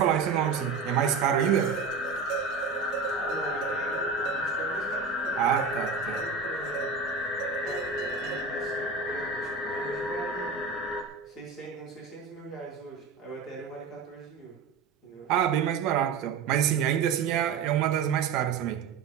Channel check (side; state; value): left; quieter; 5.0 dB